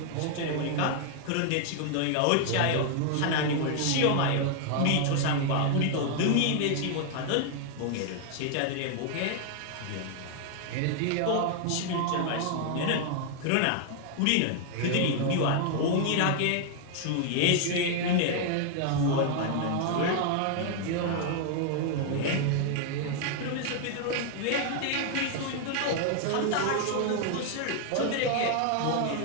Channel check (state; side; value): different; both; correlation 0.00